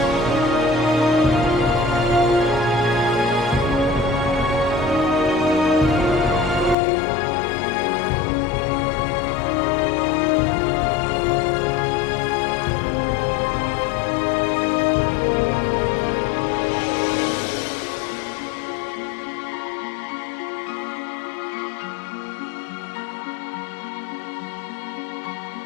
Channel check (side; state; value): right; drops out; at 6.8 s